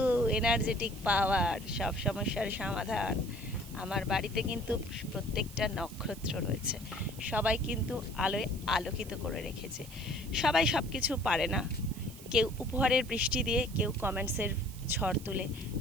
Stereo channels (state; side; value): noise; right; hiss, 17 dB below the sound